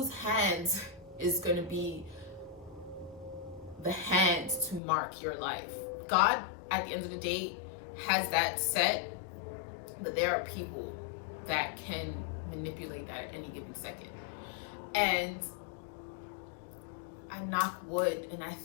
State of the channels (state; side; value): drops out; right; at 4.8 s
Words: hands is going to be the hands to mark your life. God, at the end of the day, has that set, but there are people that can manipulate that at any given second. And I knock wood, and I